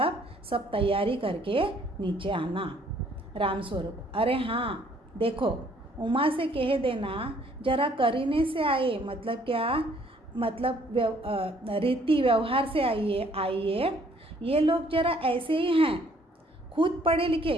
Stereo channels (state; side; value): normal; both; correlation 0.62